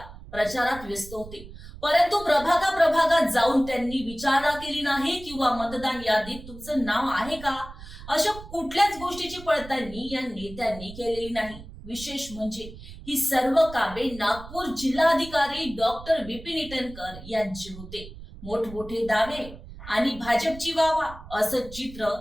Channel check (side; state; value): right; noise; rumble, 15 dB below the sound